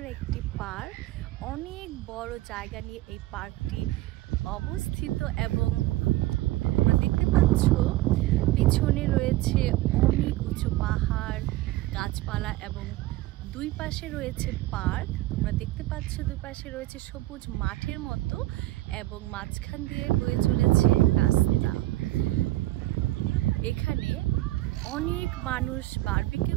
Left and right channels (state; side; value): quieter; left; 17.3 dB